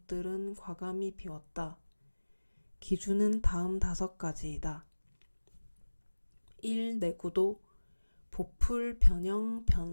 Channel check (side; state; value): both; inverted; correlation -1.00